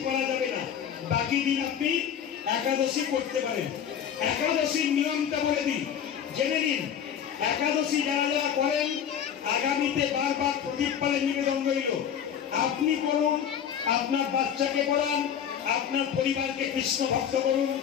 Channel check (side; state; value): right; quieter; 8.7 dB